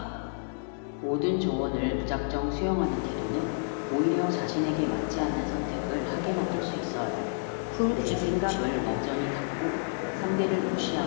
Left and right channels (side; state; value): right; silent; digital silence